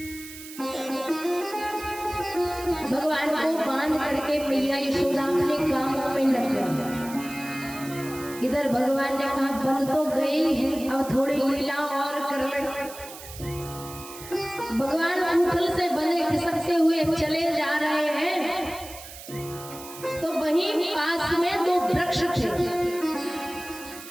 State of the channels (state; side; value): noise; right; hiss, 14 dB below the sound